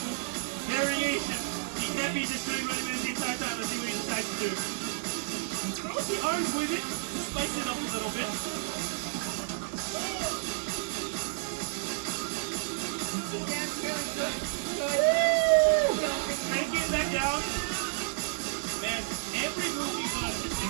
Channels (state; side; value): silent; left; digital silence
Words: variation. He can't be just doing running man the entire time. Let's see what he decides to do. Throws the arms with it to spice it up a little bit. That's really good. Cranking it back down. Man, every move he does is